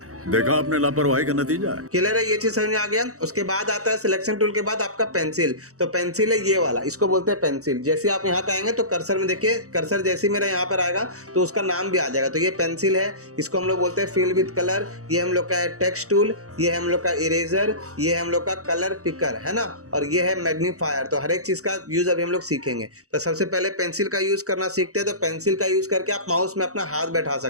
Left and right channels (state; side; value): late; left; 0.65 ms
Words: देखा आपने लापरवाही का नतीजा है। क्लियर है, ये चीज समझ में आ गया। उसके बाद आता है सिलेक्शन टूल के बाद आपका पेंसिल। तो पेंसिल है ये वाला, इसको बोलते हैं पेंसिल। जैसे आप यहाँ पे आएंगे तो कर्सर में देखिए, कर्सर जैसे मेरा यहाँ पर आएगा तो उसका नाम भी आ जाएगा। तो ये पेंसिल है, इसको हम लोग बोलते हैं फिल विद कलर। ये हम लोग का है टेक्स्ट टूल, ये है हम लोग का इरेजर, ये है हम लोग का कलर पिकर, है ना, और ये है मैग्नीफायर। तो हर एक चीज का यूज अभी हम लोग सीखेंगे। तो सबसे पहले पेंसिल का यूज करना सीखते हैं। तो पेंसिल का यूज करके आप माउस में अपना हाथ बैठा